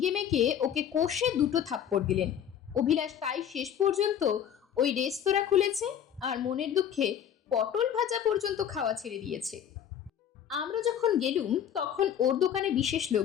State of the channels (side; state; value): right; quieter; 9.2 dB